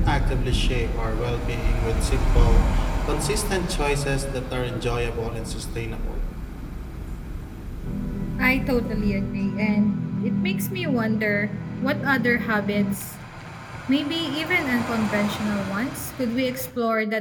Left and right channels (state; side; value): identical; both; correlation 1.00